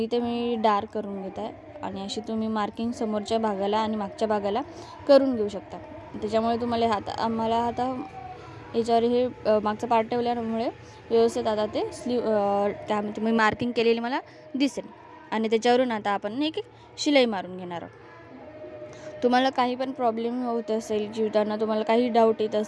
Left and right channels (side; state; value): both; identical; correlation 1.00